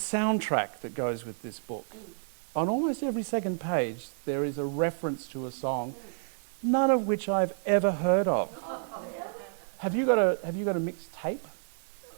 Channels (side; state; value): left; silent; 58 dB below the other